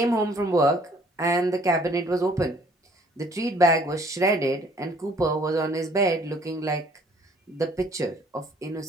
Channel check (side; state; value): both; normal; correlation 0.58